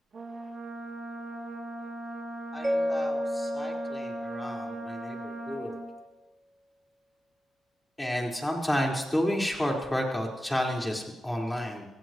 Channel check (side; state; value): both; normal; correlation 0.92